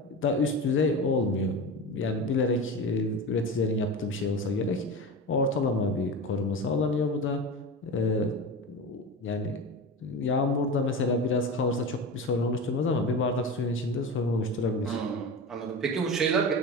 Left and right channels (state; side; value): normal; both; correlation 0.26